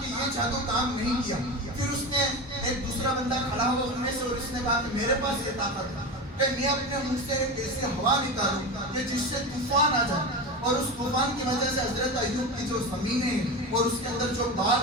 کہ یہ جادو کام نہیں کیا۔ پھر اس نے ایک دوسرا بندہ کھڑا ہوا ان میں سے اور اس نے کہا کہ میرے پاس یہ طاقت ہے کہ میں اپنے منہ سے ایک ایسی ہوا نکالوں کہ جس سے طوفان آ جائے، اور اس طوفان کی وجہ سے حضرت ایوب کی جو زمینیں اور اس کے اندر جو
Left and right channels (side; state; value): both; normal; correlation 0.23